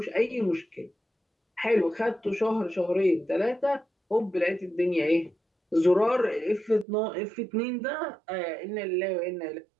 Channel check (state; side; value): drops out; left; at 6.9 s